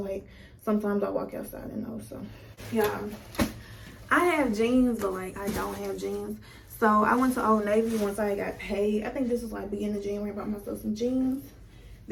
sometimes I walk outside in those. So yeah, I have jeans, but like I don't have jeans. So I went to Old Navy once I got paid. I think this was like beginning of January. I bought myself some jeans.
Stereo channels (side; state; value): both; identical; correlation 1.00